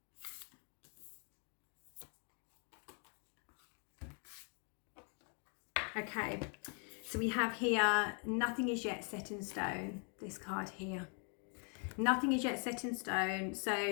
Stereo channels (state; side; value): quieter; right; 39.1 dB